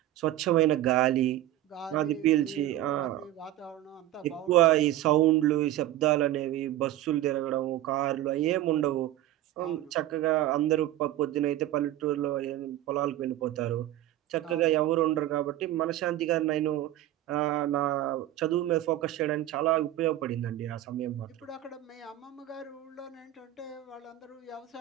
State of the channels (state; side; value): quieter; left; 14.0 dB